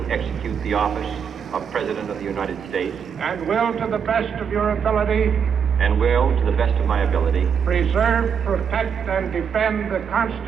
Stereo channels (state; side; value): quieter; left; 7.2 dB